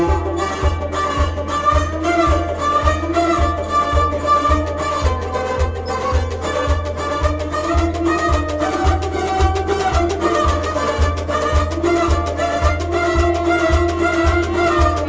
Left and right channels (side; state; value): both; identical; correlation 1.00